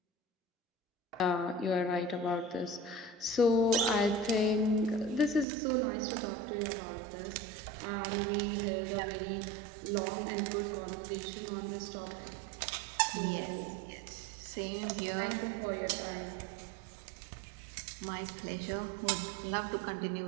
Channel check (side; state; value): left; drops out; at 5.5 s